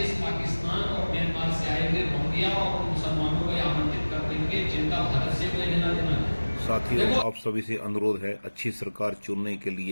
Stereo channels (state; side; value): inverted; both; correlation -1.00